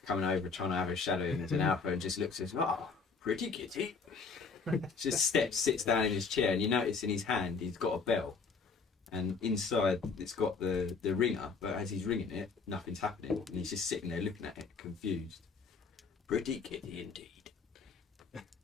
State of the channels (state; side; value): quieter; right; 4.9 dB